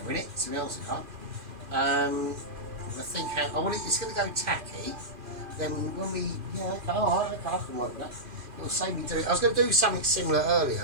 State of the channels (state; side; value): late; left; 2.5 ms